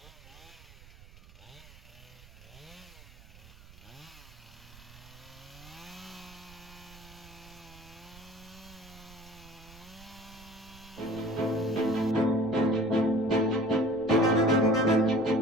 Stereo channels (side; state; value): right; noise; rumble, 20 dB below the sound